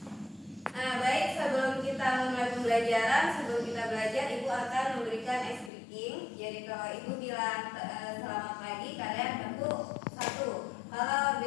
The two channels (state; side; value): drops out; right; at 5.7 s